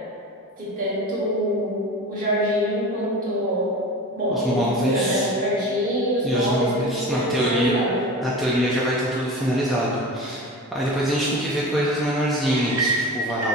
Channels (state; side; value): normal; both; correlation 0.33